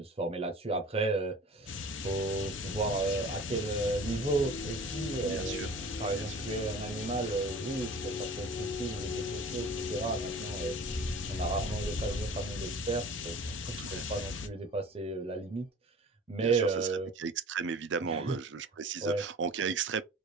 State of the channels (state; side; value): normal; both; correlation 0.43